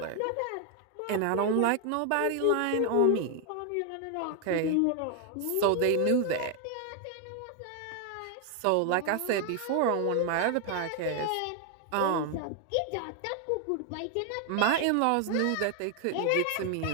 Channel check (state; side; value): different; both; correlation 0.00